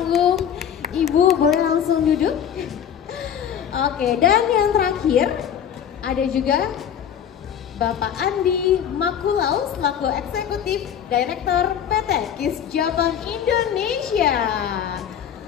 Ibu boleh langsung duduk. Oke, dan yang terakhir ada juga Bapak Andi Makulau selaku Eksekutif Direktur PT KIS Japan Indonesia.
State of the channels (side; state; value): right; quieter; 8.8 dB